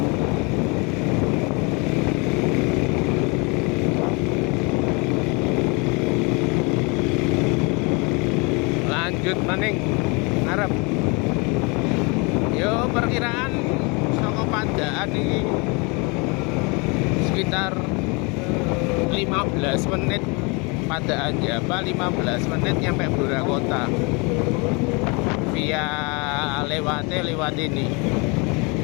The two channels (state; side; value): quieter; right; 30.0 dB